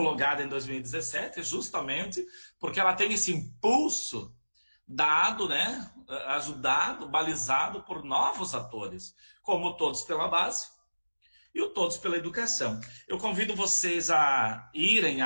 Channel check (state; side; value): inverted; both; correlation -1.00